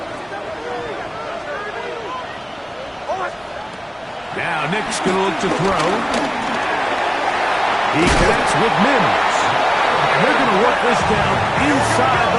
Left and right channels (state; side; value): identical; both; correlation 1.00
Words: Now Nick's going to look to throw. He connects with Mims. And they're going to work this down inside